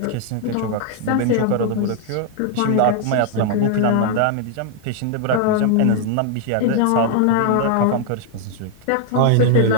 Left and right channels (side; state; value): both; different; correlation 0.00